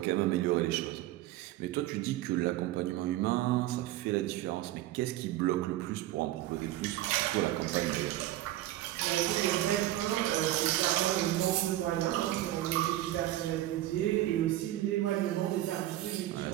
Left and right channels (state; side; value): quieter; left; 14.8 dB